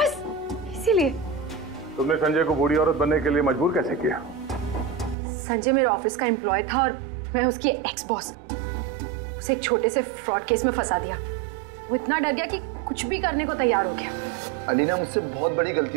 इसीलिए। तुमने संजय को बूढ़ी औरत बनने के लिए मजबूर कैसे किया? संजय मेरे ऑफिस का एम्प्लॉय था और मैं उसकी एक्स बॉस। उसे एक छोटे से फ्रॉड केस में फंसा दिया। वो इतना डर गया कि कुछ भी करने को तैयार हो गया। अलीना, मुझसे बहुत बड़ी गलती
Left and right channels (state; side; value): drops out; left; at 5.2 s